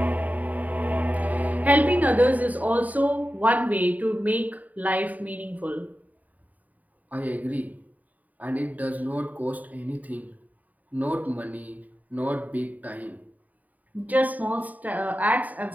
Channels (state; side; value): late; left; 0.076 ms